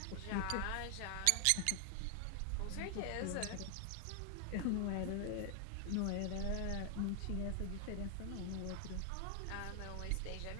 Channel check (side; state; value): both; different; correlation 0.00